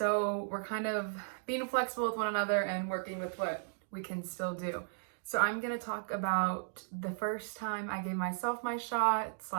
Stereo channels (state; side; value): silent; left; digital silence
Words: we're kind of being flexible with one another and working with what we can still do. So I'm going to talk about the first time I gave myself my shot